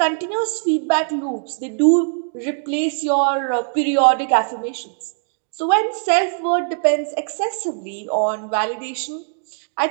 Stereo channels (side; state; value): left; silent; digital silence